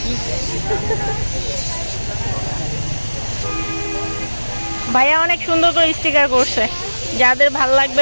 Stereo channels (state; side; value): inverted; both; correlation -1.00